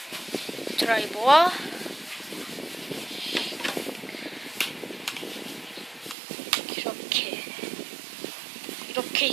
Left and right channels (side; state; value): left; drops out; at 6.2 s